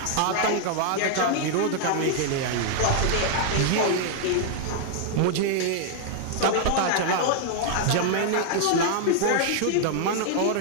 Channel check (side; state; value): both; different; correlation 0.00